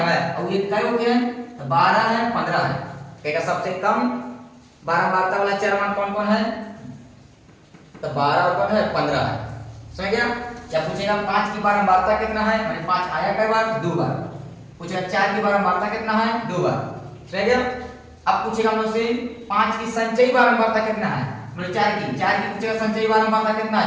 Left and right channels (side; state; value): both; identical; correlation 1.00